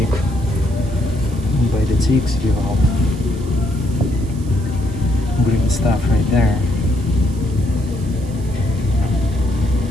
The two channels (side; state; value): right; noise; hiss, 22 dB below the sound